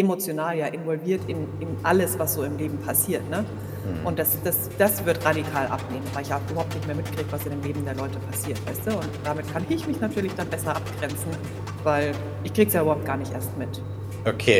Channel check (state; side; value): identical; both; correlation 1.00